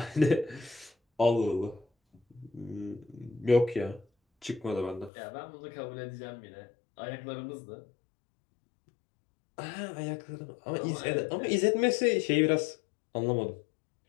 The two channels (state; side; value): drops out; right; at 5.1 s